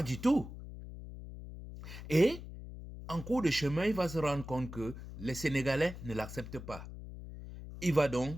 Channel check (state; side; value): noise; left; hum, 12 dB below the sound